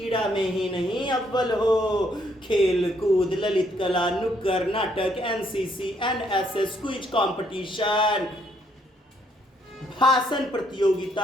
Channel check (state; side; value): normal; both; correlation 0.70